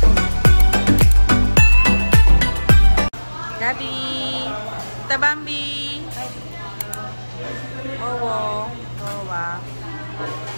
Gabi! Tabambi! Owo! Owa!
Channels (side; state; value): both; inverted; correlation -1.00